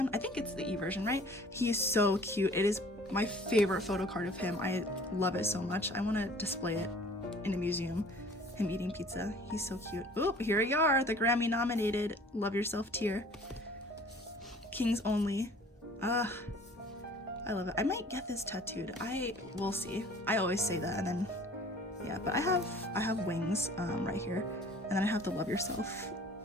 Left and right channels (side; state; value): both; normal; correlation 0.50